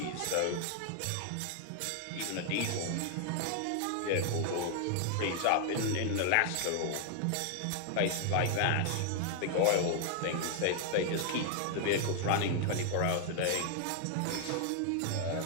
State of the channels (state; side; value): different; both; correlation 0.00